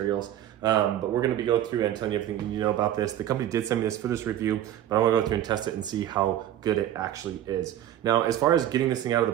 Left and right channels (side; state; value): left; quieter; 11.9 dB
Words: But we're going to be going through and telling you everything you need to know about this. The company did send me this for this review, but I want to go through and test it and see how good it actually is. Now, as far as getting this thing out of